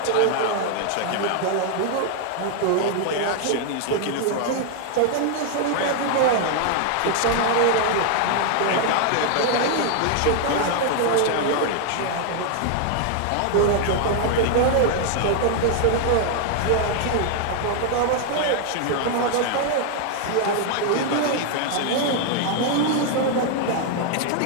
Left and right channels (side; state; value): both; different; correlation 0.00